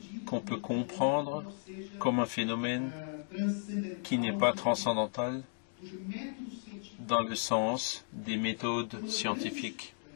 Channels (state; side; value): silent; right; digital silence